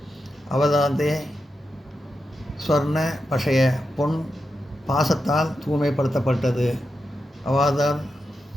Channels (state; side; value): normal; both; correlation 0.88